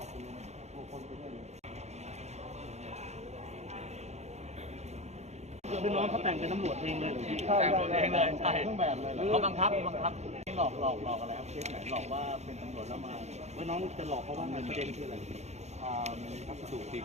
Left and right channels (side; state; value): left; late; 0.32 ms